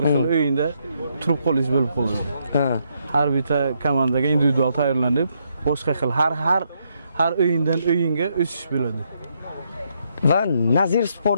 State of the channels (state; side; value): inverted; both; correlation -0.76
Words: xil o'yinda turib qolish bo'lib qoladi. Ha. Har bitta komandaga individual tayyorlanib, boshqa xil har o'yindan o'yinga o'sish bo'ladi. Va Nazir